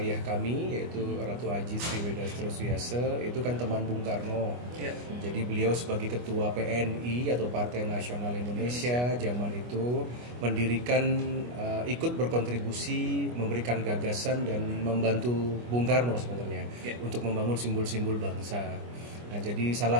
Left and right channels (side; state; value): left; late; 25 ms